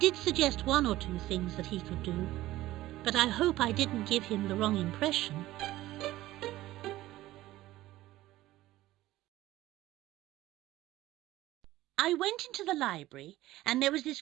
suggest one or two things that he could do, but I hope I didn't give him the wrong impression. I went into the library, and there was this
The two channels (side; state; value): left; quieter; 16.2 dB